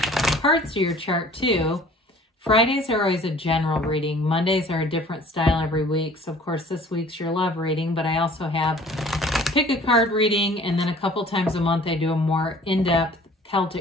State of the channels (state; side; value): normal; both; correlation 0.50